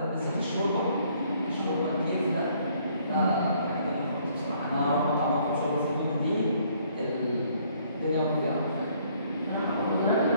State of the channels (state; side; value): inverted; both; correlation -0.64